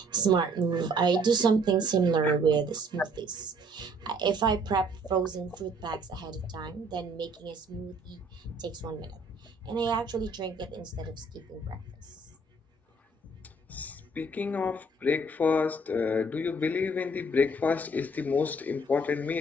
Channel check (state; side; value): normal; both; correlation 0.60